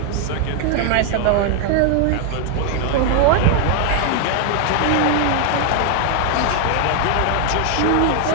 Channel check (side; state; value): both; different; correlation 0.00